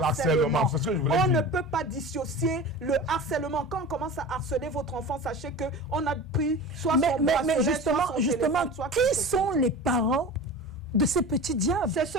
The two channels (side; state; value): both; normal; correlation 0.33